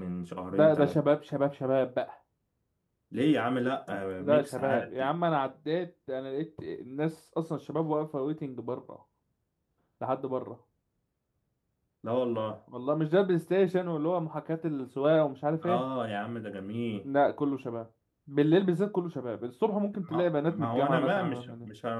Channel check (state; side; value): identical; both; correlation 1.00